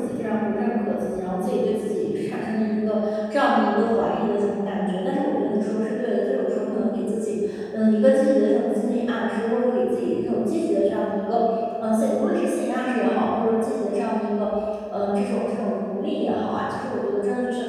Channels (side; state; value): both; identical; correlation 1.00